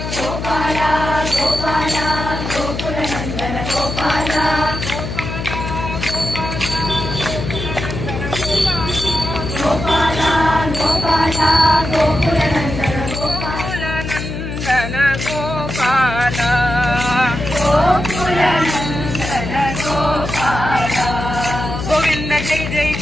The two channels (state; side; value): noise; left; hum, 6 dB below the sound